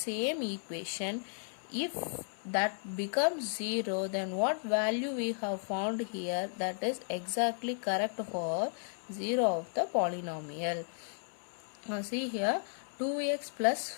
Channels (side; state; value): right; silent; 55 dB below the other